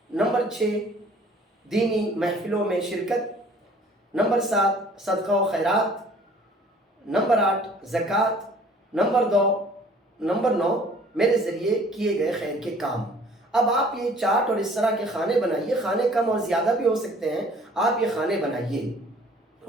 नंबर 6 दीनी महफ़िलों में शिरकत। नंबर 7 सदका व खैरात। नंबर 8 ज़कात। नंबर 9 मेरे ज़रिए किए गए खैर के काम। अब आप ये चार्ट और इस तरह के खाने बनाइए, खाने कम और ज़्यादा भी हो सकते हैं, आप ये खाने बनाइए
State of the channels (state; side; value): normal; both; correlation 0.53